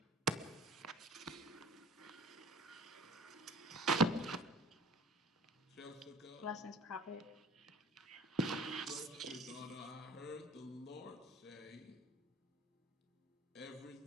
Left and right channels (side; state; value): both; normal; correlation 0.44